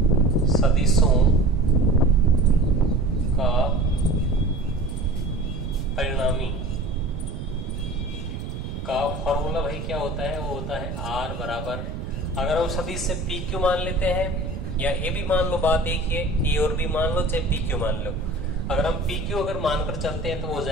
सदिशों का परिणामी का फॉर्मूला भाई क्या होता है, वो होता है R बराबर, अगर हम सदिश से PQ मान लेते हैं या ए भी मान लो, बात एक है, ए और बी मान लो चाहे PQ मान लो। अगर हम PQ अगर मानकर चलते हैं तो हो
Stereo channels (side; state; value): right; noise; rumble, 7 dB below the sound